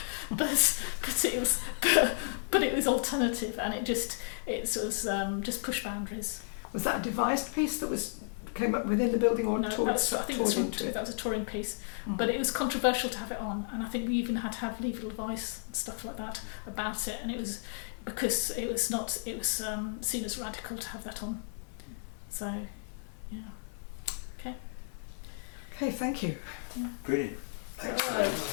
it was alternative, and it was just push boundaries. Was that a devised piece that came up within the building, or No, toured I think into it? that was a touring piece, but it was controversial to have it on, and I think we even had to have legal advice and stuff like that about it, and it was because it was seen as radical to have that on. So, yeah. Okay, thank you. Yeah. Brilliant. Excellent. That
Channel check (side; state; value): right; silent; digital silence